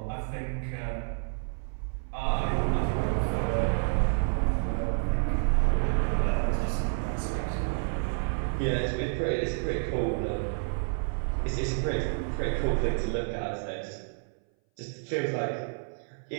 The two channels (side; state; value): left; silent; 58 dB below the other